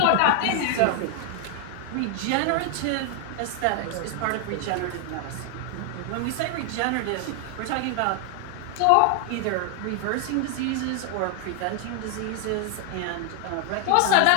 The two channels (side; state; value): both; different; correlation 0.00